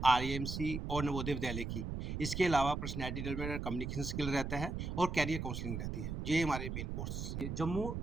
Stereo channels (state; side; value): noise; right; rumble, 4 dB below the sound